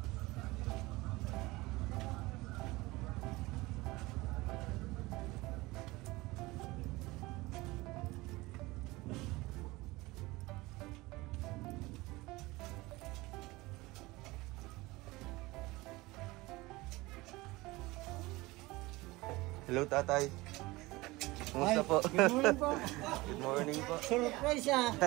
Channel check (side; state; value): left; quieter; 21.1 dB